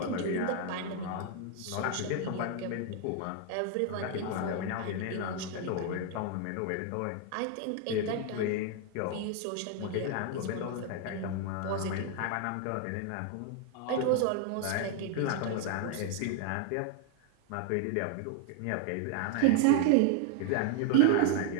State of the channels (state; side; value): different; both; correlation 0.00